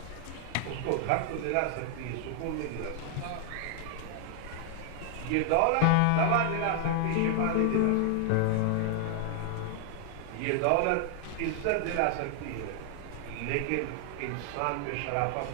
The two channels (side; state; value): both; different; correlation 0.00